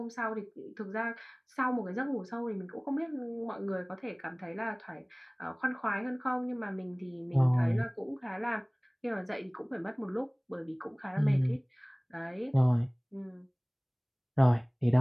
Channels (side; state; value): both; identical; correlation 1.00